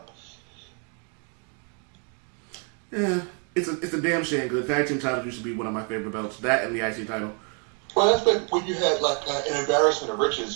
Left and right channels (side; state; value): left; quieter; 39.5 dB